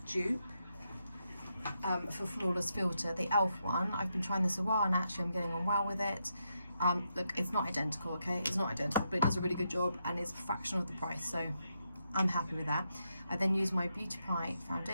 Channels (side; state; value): both; inverted; correlation -0.82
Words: dupe for Flawless Filter, the e.l.f. one. I've been trying this a while and actually I'm getting on well with it. Look, it's not identical, okay? It's not identical, but it does a really good job and it's a fraction of the price, so I'm happy with that. I then use my Beauty Pie